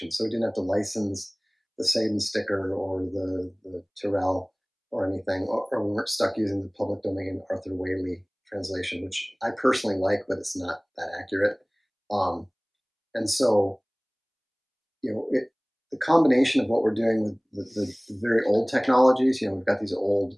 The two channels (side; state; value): both; identical; correlation 1.00